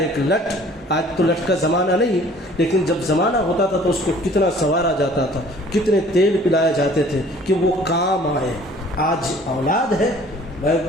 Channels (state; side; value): normal; both; correlation 0.52